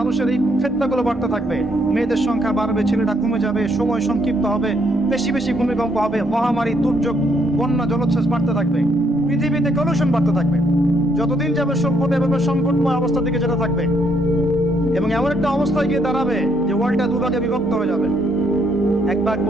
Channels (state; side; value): normal; both; correlation 0.71